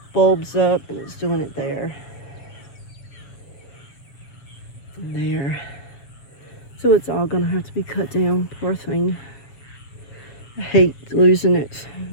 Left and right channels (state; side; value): late; right; 7.3 ms